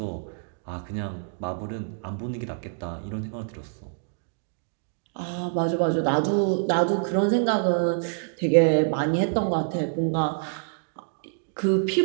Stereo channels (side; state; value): left; silent; digital silence